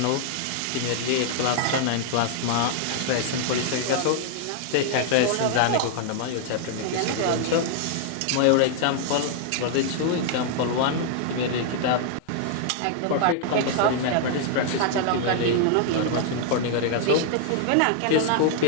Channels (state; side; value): different; both; correlation -0.01